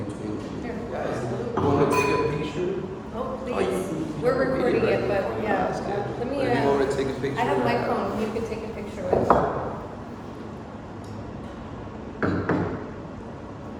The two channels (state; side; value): identical; both; correlation 1.00